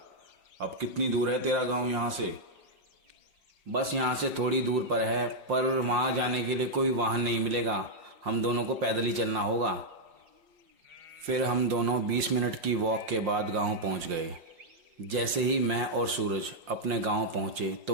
अब कितनी दूर है तेरा गांव यहाँ से? बस यहाँ से थोड़ी दूर पर है, पर वहाँ जाने के लिए कोई वाहन नहीं मिलेगा, हम दोनों को पैदल ही चलना होगा। फिर हम दोनों 20 मिनट की वॉक के बाद गांव पहुँच गए। जैसे ही मैं और सूरज अपने गांव पहुँचे तो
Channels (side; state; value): left; late; 5.7 ms